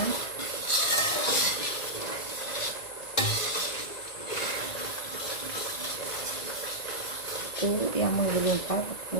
Itu yang menggelumpal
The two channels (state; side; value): late; right; 1.9 ms